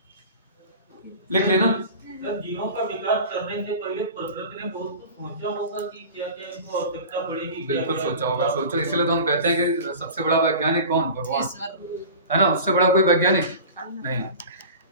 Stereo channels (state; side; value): inverted; both; correlation -0.37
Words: लिख लेना। सर जीवों का विकास करने से पहले प्रकृति ने बहुत कुछ सोचा होगा कि क्या क्या इनको आवश्यकता पड़ेगी। बिल्कुल सोचा होगा, सोचो, इसलिए तो हम कहते हैं कि सबसे बड़ा वैज्ञानिक कौन, भगवान ईश्वर है ना, उससे बड़ा कोई वैज्ञानिक नहीं,